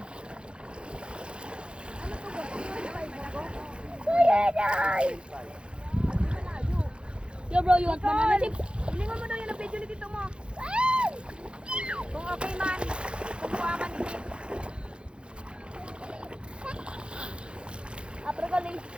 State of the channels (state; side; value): late; left; 0.055 ms